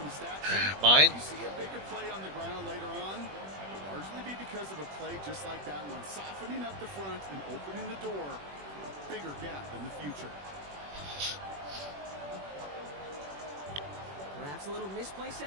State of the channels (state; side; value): late; left; 21 ms